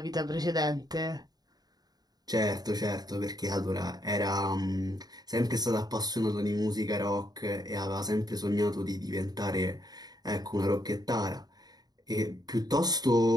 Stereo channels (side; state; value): left; late; 0.19 ms